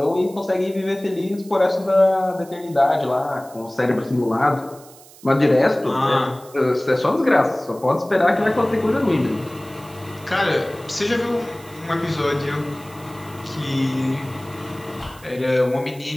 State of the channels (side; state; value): right; noise; hiss, 22 dB below the sound